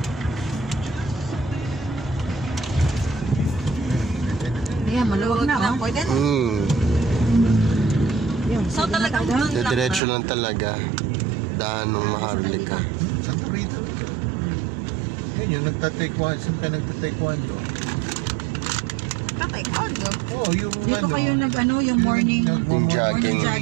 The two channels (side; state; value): left; drops out; at 10.0 s